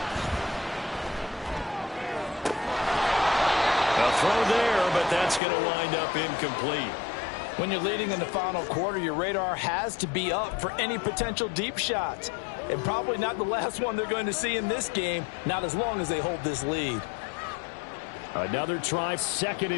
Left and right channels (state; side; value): drops out; right; at 5.4 s